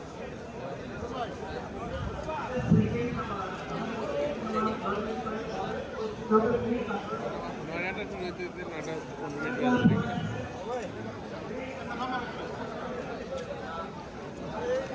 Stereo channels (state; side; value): identical; both; correlation 1.00